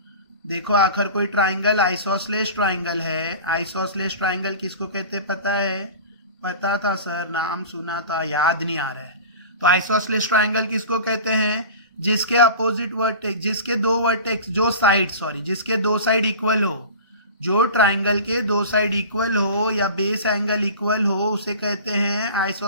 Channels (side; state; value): both; inverted; correlation -0.36